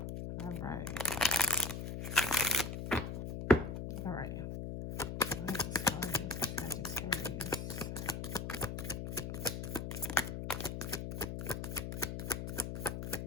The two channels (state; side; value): noise; left; hum, 5 dB below the sound